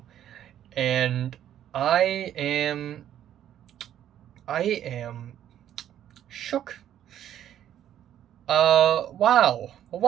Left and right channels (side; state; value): left; quieter; 10.9 dB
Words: and I am I am shook. Wow.